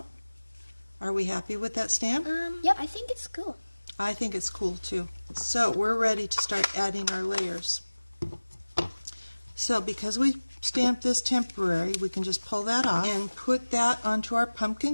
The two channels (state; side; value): inverted; both; correlation -1.00